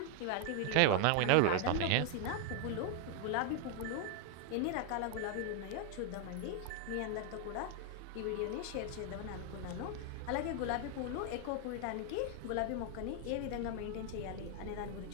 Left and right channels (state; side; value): different; both; correlation 0.00